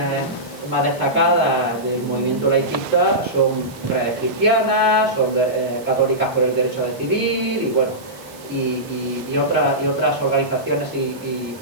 más destacadas del movimiento laicista son redes cristianas, son católicas por el derecho a decidir, y bueno, y otras organizaciones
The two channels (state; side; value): noise; right; hiss, 22 dB below the sound